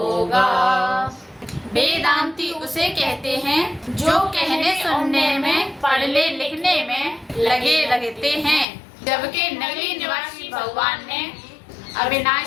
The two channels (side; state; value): right; drops out; at 8.7 s